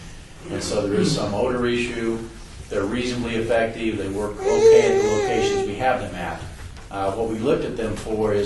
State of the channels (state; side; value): identical; both; correlation 1.00